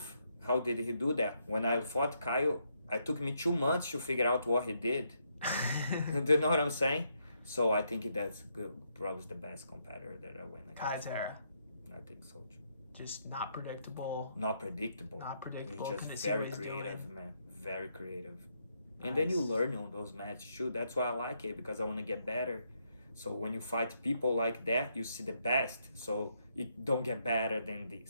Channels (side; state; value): both; inverted; correlation -0.77